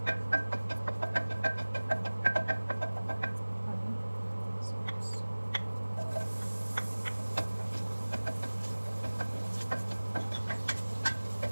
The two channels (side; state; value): both; inverted; correlation -1.00